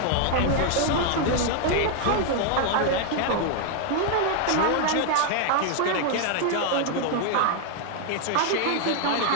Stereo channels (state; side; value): different; both; correlation 0.00